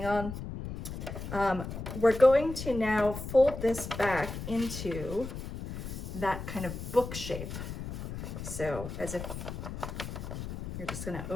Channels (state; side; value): noise; left; rumble, 7 dB below the sound